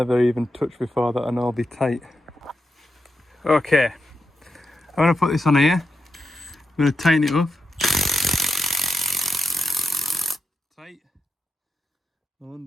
even touched before that I know will be tight. Okay, I'm going to put this on here. I'm going to tighten it up. Tight. I'll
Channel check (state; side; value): normal; both; correlation 0.87